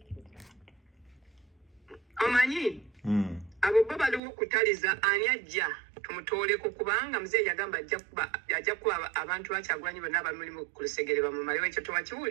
Omanyi abo bo baliwo okutaliza ani ajja tumutooleko kubanga Muzee yagamba ajja kuba abantu bakyagulanyi bonna abamulimu ku lusegere bamumalewo. Ekyo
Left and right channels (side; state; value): left; drops out; at 4.2 s